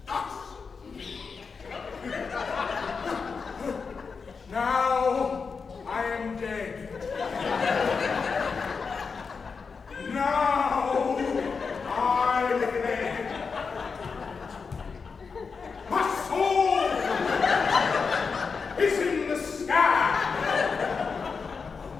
Thus. Now I am dead. Now I live. My soul is in the sky.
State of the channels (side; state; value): right; quieter; 5.2 dB